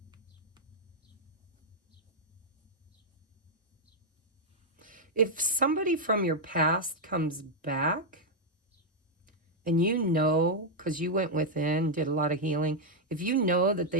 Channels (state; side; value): normal; both; correlation -0.02